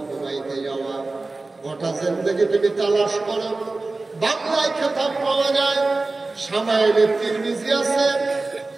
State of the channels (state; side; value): quieter; left; 3.4 dB